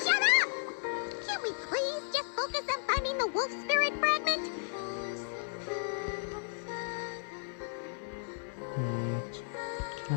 up! Can't we please just focus on finding the wolf spirit fragment? Can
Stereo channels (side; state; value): right; silent; digital silence